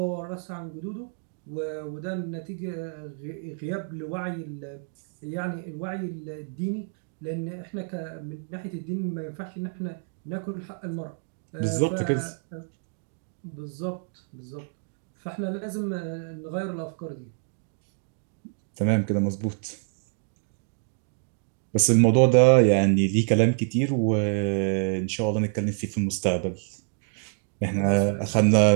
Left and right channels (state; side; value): silent; left; 58 dB below the other